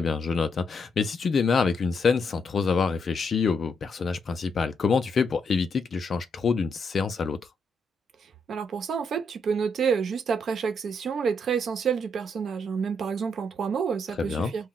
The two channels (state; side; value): normal; both; correlation 0.77